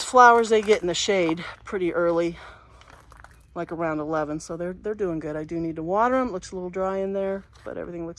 flowers, they get in the shade pretty early, like around 11, so they're doing good. I do need to water them. It looks a little dry in there, but everything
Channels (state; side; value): identical; both; correlation 1.00